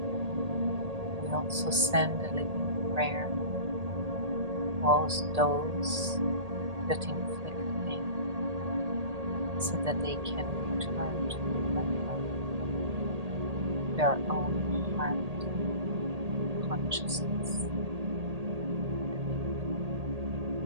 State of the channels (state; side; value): late; left; 1.8 ms